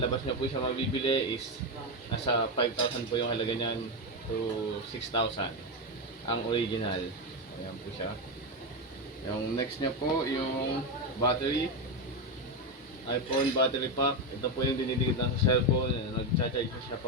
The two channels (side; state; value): both; normal; correlation 0.10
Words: labas niyo po siya mabibili is nasa 5,000 po yung halaga niyan to 6,000 ang original. Ayan po siya. Yung next niya po yung battery, iPhone battery pack. Ito po yung dinidikit lang sa cellphone. Nag-charge siya